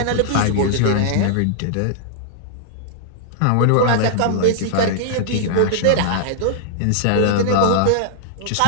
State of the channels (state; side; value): different; both; correlation -0.01